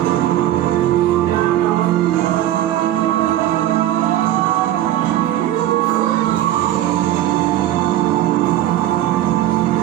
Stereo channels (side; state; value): left; quieter; 13.3 dB